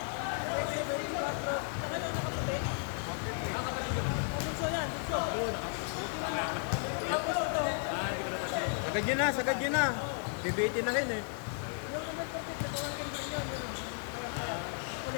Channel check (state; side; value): silent; right; 55 dB below the other